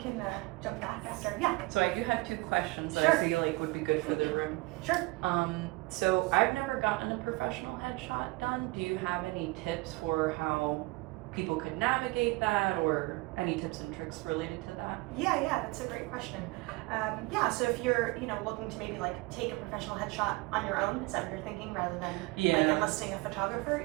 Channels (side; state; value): left; quieter; 23.4 dB